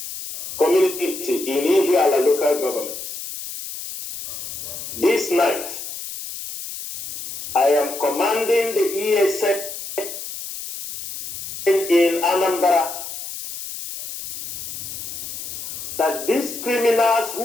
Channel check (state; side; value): noise; left; hiss, 9 dB below the sound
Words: community in Ihiala local government. This night, I am commanding the ESN in Anambra that these criminals